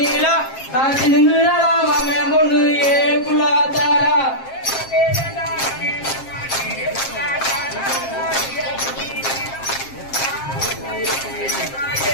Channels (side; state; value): right; late; 7.5 ms